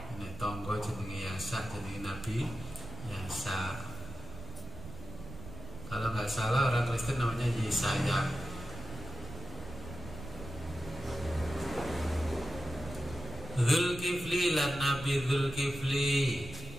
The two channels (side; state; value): right; noise; rumble, 13 dB below the sound